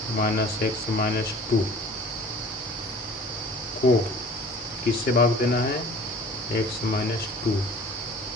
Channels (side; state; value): both; normal; correlation 0.46